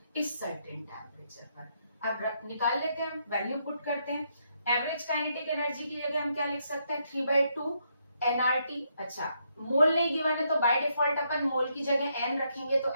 इस सर्टेन टेम्परेचर पर। अब निकाल लेते हैं, वैल्यू पुट करते हैं। एवरेज काइनेटिक एनर्जी की जगह हम क्या लिख सकते हैं, 3/2 nRT। अच्छा, मोल नहीं गिवन है तो बाय डिफॉल्ट अपन मोल की जगह n रखेंगे तो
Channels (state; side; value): inverted; both; correlation -0.76